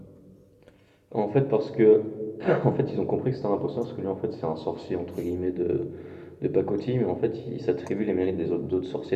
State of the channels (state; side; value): identical; both; correlation 1.00